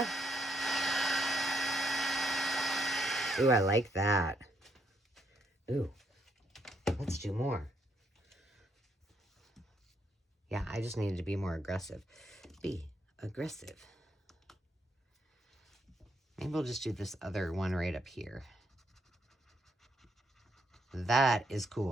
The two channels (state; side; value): normal; both; correlation 0.74